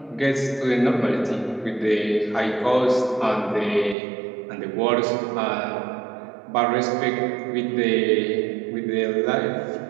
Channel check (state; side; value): drops out; left; at 4.0 s